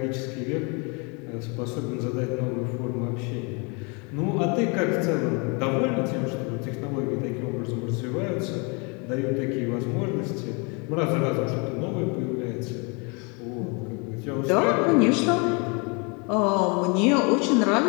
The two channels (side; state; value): right; quieter; 31.9 dB